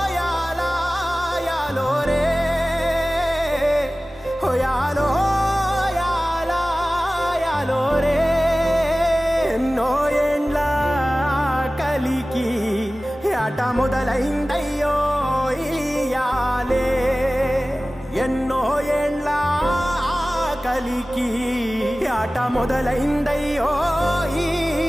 యాలా యాలో రే ఓ యాలో యాలా యాలో రే ఎన్నో ఏండ్ల కలికి ఆట మొదలైందయ్యో ఇయాలే ఎన్నో ఏండ్ల కలికి ఆట మొదలైందయ్యో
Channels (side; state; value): both; normal; correlation 0.97